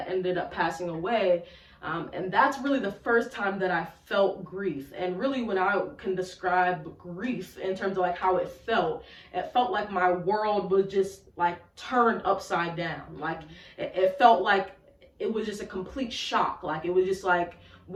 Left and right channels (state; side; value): identical; both; correlation 1.00